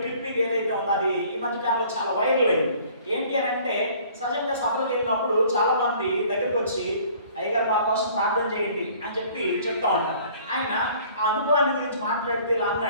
క్లిప్పింగ్ ఏదైతే ఉందో అది ఈ మధ్య కాలంలో చాలా వైరల్ అయింది. ఏంటి అని అంటే, సహజంగా సభలకు వెళ్ళినప్పుడు చాలా మంది దగ్గరికి వచ్చి అయ్యగారు మా కోసం ప్రార్థన చేయండి అని చెప్తా ఉంటారు. ఆయన ఆ అనుభవాన్ని గురించి మాట్లాడితే ఇలా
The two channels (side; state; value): both; inverted; correlation -0.53